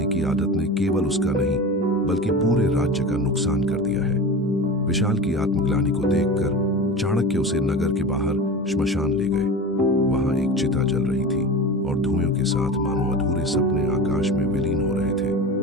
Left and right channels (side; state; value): both; normal; correlation 0.30